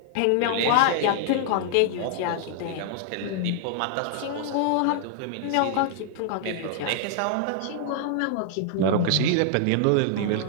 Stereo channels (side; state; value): both; different; correlation -0.01